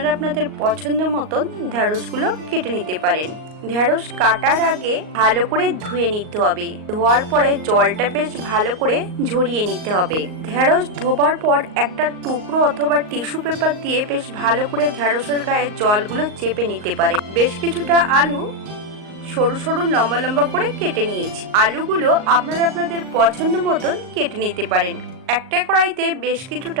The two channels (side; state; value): left; late; 38 ms